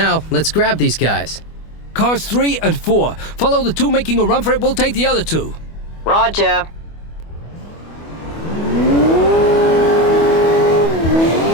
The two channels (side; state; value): right; late; 25 ms